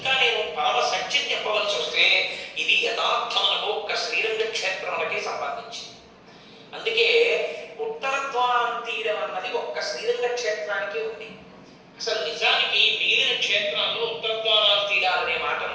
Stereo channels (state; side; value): identical; both; correlation 1.00